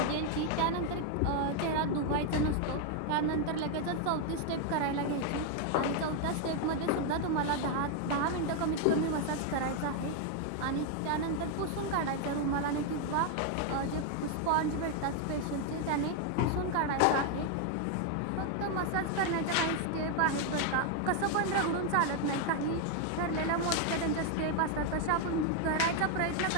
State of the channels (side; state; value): both; different; correlation 0.00